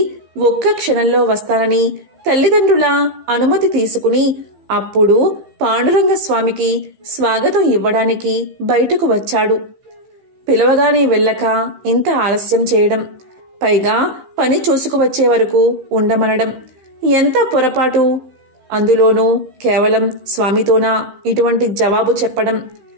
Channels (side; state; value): left; late; 15 ms